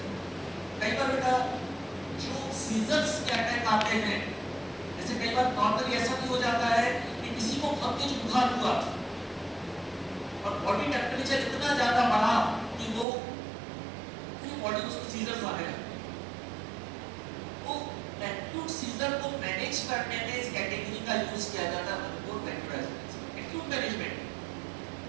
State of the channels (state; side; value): drops out; left; at 13.1 s